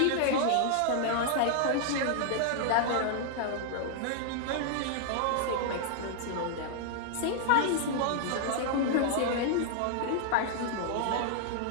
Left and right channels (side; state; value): both; different; correlation -0.01